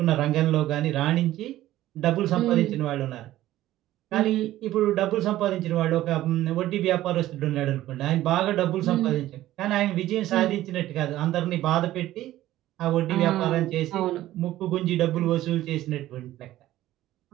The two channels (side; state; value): left; quieter; 14.6 dB